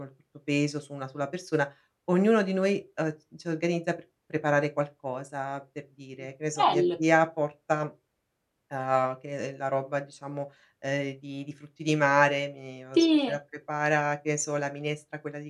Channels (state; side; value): identical; both; correlation 1.00